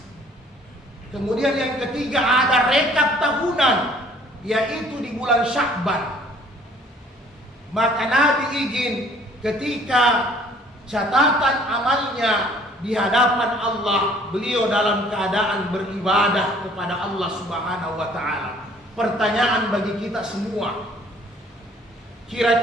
Kemudian yang ketiga ada rekap tahunan, yaitu di bulan Sya'ban. Maka Nabi izin ketika catatan amalnya di hadapan Allah, beliau dalam keadaan beribadah kepada Allah Subhanahu wa taala. Pertanyaan bagi kita semua,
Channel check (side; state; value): both; normal; correlation 0.57